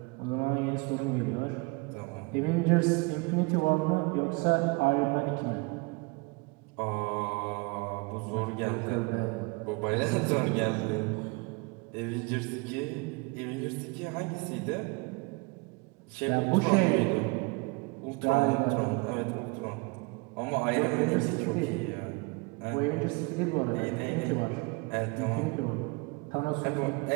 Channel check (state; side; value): quieter; left; 27.9 dB